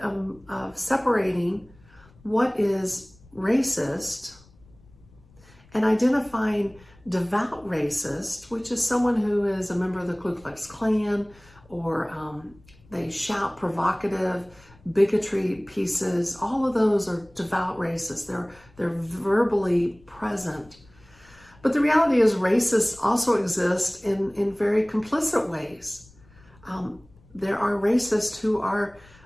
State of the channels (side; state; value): left; noise; rumble, 27 dB below the sound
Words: separating what is racist and identifying devout racist, which is someone who is a member of the Ku Klux Klan, or they shout provocative bigotry pieces. All of those are devout racists. They're verbally present. But the reality is racists also exist in very complicit ways. There are racists who are